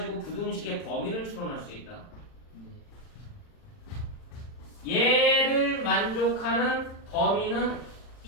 부등식의 범위를 추론할 수 있다. 얘를 만족하는 범위는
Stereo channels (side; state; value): right; late; 40 ms